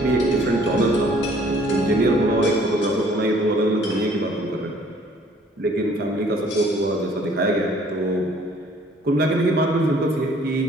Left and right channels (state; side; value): normal; both; correlation 0.58